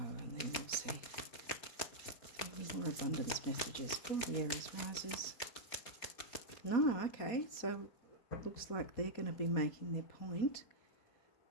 then we'll see. Any more abundance messages for the Aries risers? No, okay, so looks like they're going to be making their point.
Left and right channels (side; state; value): right; late; 4.3 ms